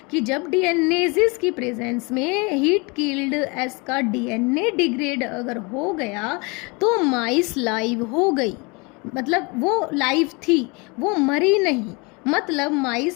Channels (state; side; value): quieter; right; 28.9 dB